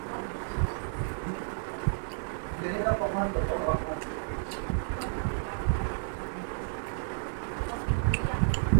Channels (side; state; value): left; silent; 55 dB below the other